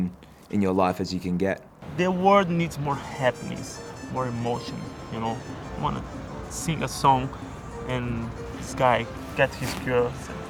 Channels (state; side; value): identical; both; correlation 1.00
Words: your life as you can get. The world needs more happiness, more emotion, you know. I want to sing a song and this guy get his girl.